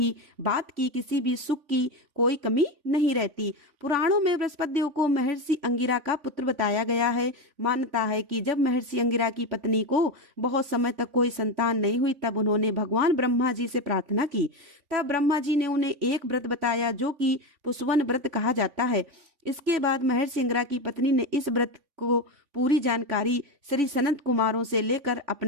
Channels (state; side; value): late; left; 3.5 ms